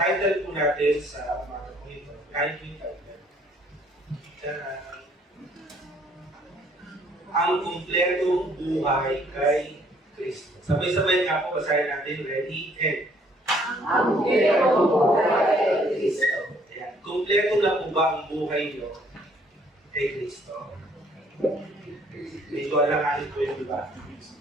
po natin sa umaga po ito, kahit yung title, ang kumpletong buhay kay Kristo. Sabay-sabay nga po, basahin natin, ready, and. Ang kumpletong buhay kay Kristo. Ayan. Kumpleto na po ba ang buhay nyo kay Kristo? Medyo alanganin po yung iba.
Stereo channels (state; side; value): normal; both; correlation 0.62